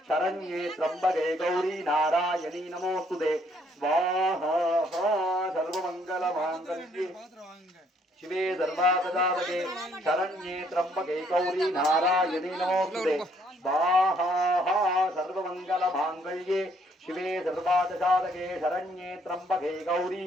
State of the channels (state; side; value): normal; both; correlation 0.67